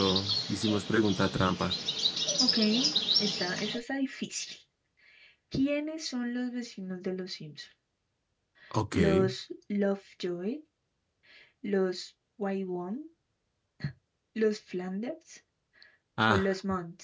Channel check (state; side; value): identical; both; correlation 1.00